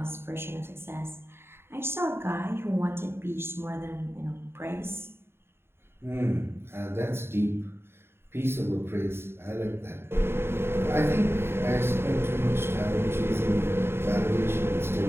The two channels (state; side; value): late; left; 0.11 ms